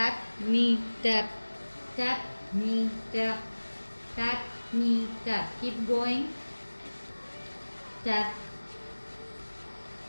knee, tap, tap, knee, tap, tap, knee, tap. Keep going. Tap.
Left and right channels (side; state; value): both; inverted; correlation -1.00